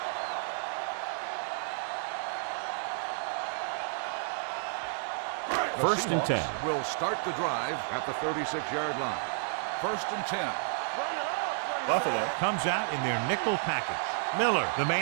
First and 10. Will start the drive at the 36-yard line. First and 10. Bring it up, bring it Buffalo up. comes out in their nickel package. Miller, the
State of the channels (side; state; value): left; silent; 57 dB below the other